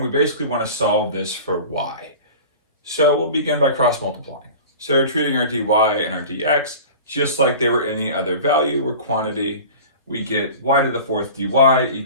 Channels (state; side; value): inverted; both; correlation -0.38